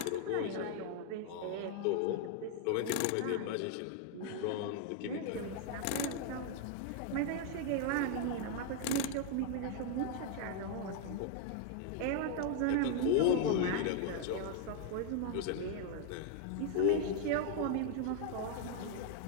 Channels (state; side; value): different; both; correlation 0.00